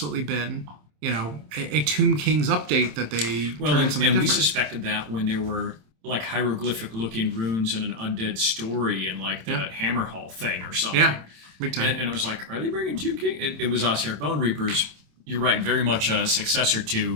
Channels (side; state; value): left; late; 27 ms